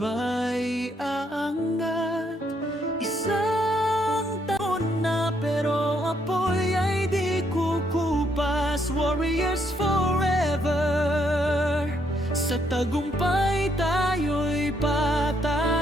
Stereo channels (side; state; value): both; normal; correlation 0.73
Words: aangat. Isang taon na pero apoy ay di kukupas. Warriors forever, sa tagumpay tayo'y